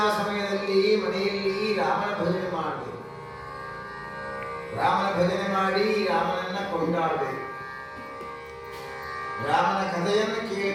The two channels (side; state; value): both; identical; correlation 1.00